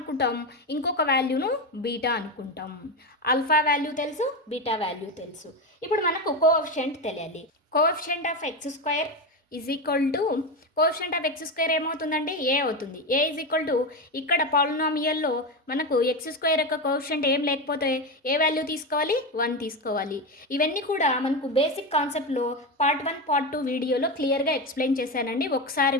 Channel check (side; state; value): both; normal; correlation 0.16